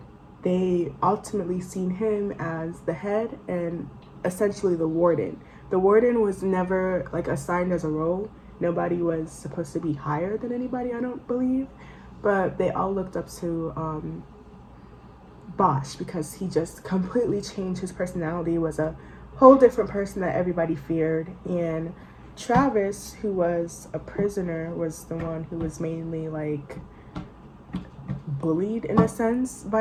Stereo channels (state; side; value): identical; both; correlation 1.00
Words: They ultimately seen him as the head and essentially the warden. The warden was never, assigned as a role. Nobody was supposed to be higher than anybody, I don't believe. But they all looked up to Bosch because he just completely changed his personality, was a whole different person that everybody feared. And Travis, who was a prisoner, was the one who was mainly, bullied in a sense